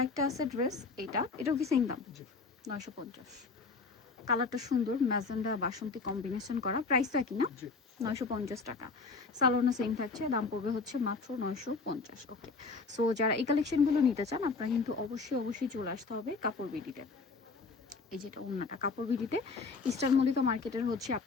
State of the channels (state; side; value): quieter; right; 4.3 dB